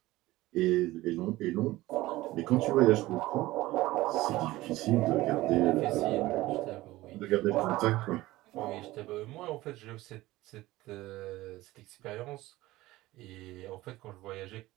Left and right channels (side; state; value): left; quieter; 17.9 dB